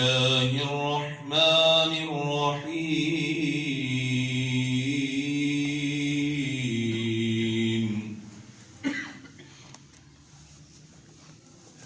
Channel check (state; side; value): identical; both; correlation 1.00